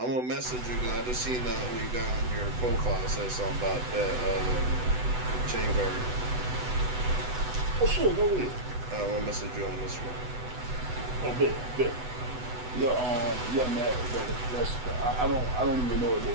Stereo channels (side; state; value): left; late; 8.0 ms